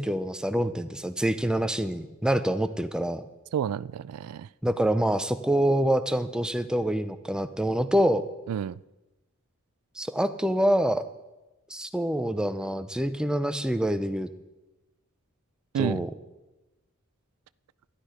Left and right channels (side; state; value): both; normal; correlation 0.85